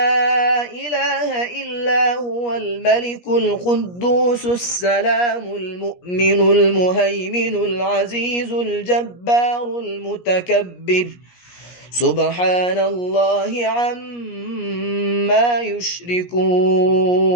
إله إلا هو الملك القدوس السلام المؤمن المهيمن العزيز الجبار المتكبر سبحان الله عما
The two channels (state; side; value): late; right; 17 ms